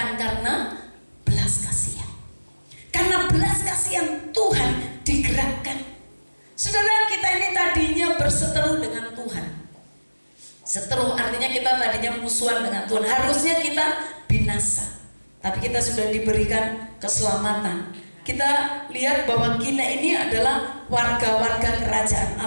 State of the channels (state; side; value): inverted; both; correlation -1.00